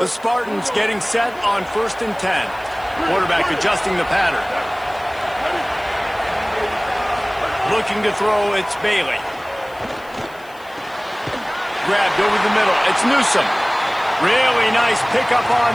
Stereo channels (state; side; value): noise; left; hiss, 26 dB below the sound